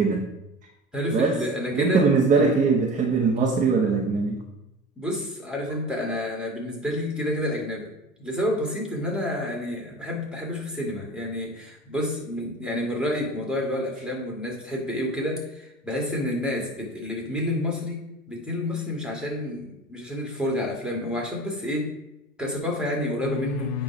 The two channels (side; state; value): both; normal; correlation 0.37